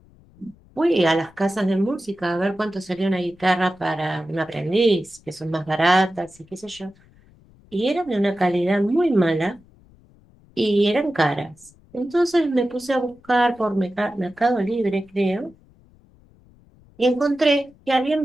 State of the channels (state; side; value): noise; left; rumble, 28 dB below the sound